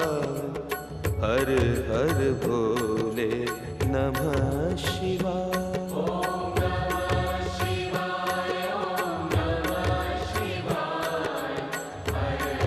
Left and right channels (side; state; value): both; identical; correlation 1.00